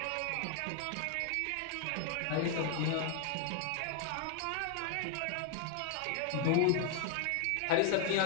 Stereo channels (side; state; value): both; different; correlation 0.00